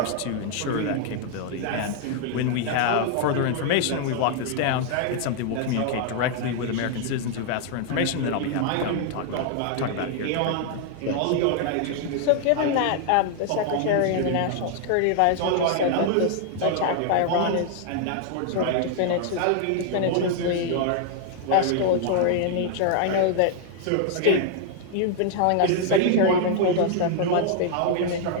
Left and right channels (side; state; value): both; different; correlation 0.00